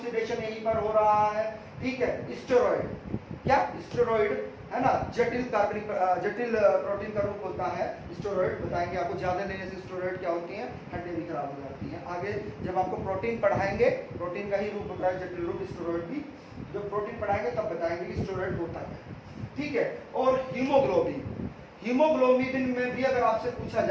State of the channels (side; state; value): both; identical; correlation 1.00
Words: यहीं पर हो रहा है, ठीक है। स्टेरॉइड, क्या? स्टेरॉइड है ना, जटिल प्रोटीन का रूप होता है स्टेरॉइड। बताएंगे आपको, ज्यादा लेने से स्टेरॉइड क्या होती हैं? हड्डियां भी खराब हो जाती हैं। आगे जब आपको प्रोटीन पढ़ाएंगे, प्रोटीन का ही रूप होता है जटिल रूप स्टेरॉइड भी, जब प्रोटीन पढ़ाएंगे तब बताएंगे कि स्टेरॉइड होता है, ठीक है। और हीमोग्लोबिन, हीमोग्लोबिन में भी अगर आपसे पूछा